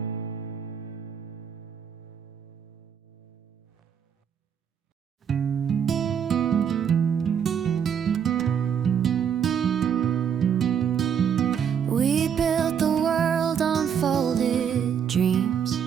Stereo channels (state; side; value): quieter; left; 7.9 dB